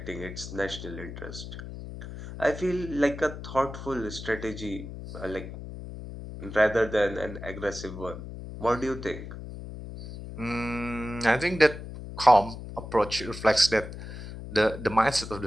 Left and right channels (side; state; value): left; noise; hum, 10 dB below the sound